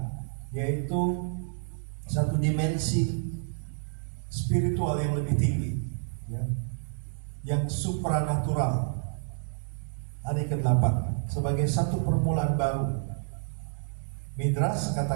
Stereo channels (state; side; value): silent; left; 58 dB below the other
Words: yaitu satu dimensi spiritual yang lebih tinggi, ya, yang supranatural. Hari ke-8 sebagai satu permulaan baru. Midrash